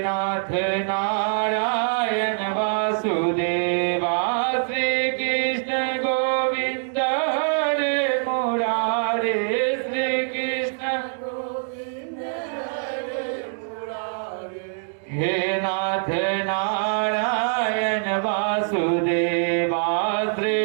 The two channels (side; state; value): left; silent; digital silence